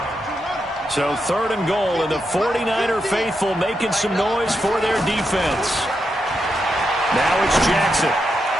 So 3rd and goal, and the 49er faithful making some noise for their defense. Now it's Jackson.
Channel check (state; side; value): normal; both; correlation 0.84